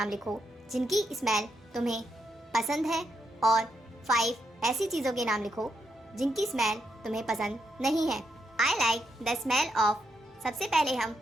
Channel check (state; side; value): normal; both; correlation 0.81